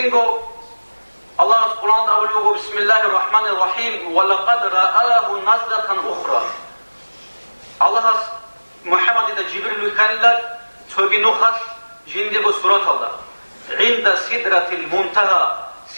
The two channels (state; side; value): inverted; both; correlation -1.00